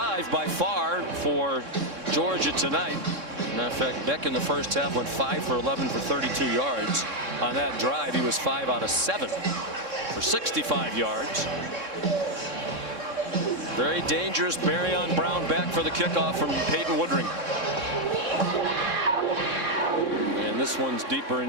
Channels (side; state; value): left; late; 3.6 ms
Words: by far for Georgia tonight. Matter of fact, Beck in the first half went 5 for 11 for 32 yards. On that drive, he was 5 out of 7 for 65 yards. Very dangerous. Barrion Brown back for the kickoff from Peyton Woodring. And this one's deeper